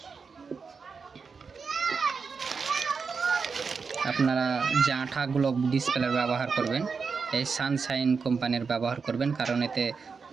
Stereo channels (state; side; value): quieter; left; 5.2 dB